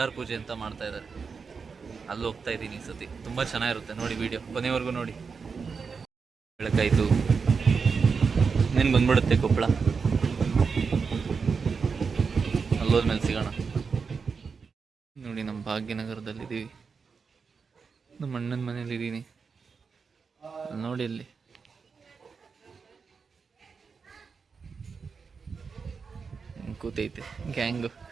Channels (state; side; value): quieter; left; 5.3 dB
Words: ಪೂಜೆ ಅಂತ ಮಾಡ್ತಾ ಇದ್ದಾರೆ. ಅಲ್ಲಿ ಹೋಗ್ತಾ ಇದ್ದೀನಿ ಈ ಸತಿ. ತುಂಬ ಚೆನ್ನಾಗಿರುತ್ತೆ, ನೋಡಿ ವಿಡಿಯೋ ಕೊನೆವರೆಗೂ ನೋಡಿ. ಬೆಳಕಾಯಿತು, ಇನ್ನೇನು ಬಂದ್ಬಿಡುತ್ತೆ ಕೊಪ್ಪಳ. ಅಲ್ಲೋದ್ಮೇಲೆ ಸಿಗೋಣ. ನೋಡಿ ನಮ್ಮ ಭಾಗ್ಯನಗರದಲ್ಲಿದ್ದೀವಿ. ನಮ್ಮ ಅಣ್ಣನ ಮನೇಲಿದ್ದೀನಿ. ನೋಡಿ ಅಲ್ಲಿ ಕೂತೈತೆ ಗ್ಯಾಂಗು.